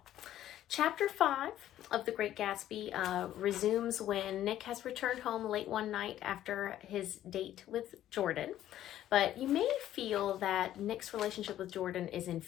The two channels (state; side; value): quieter; right; 12.4 dB